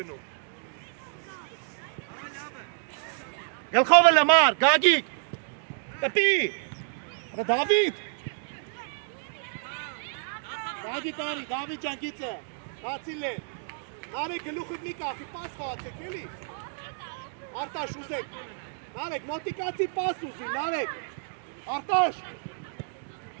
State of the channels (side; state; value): left; silent; digital silence